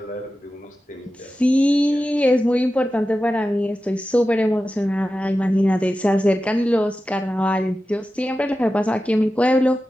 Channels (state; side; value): normal; both; correlation 0.93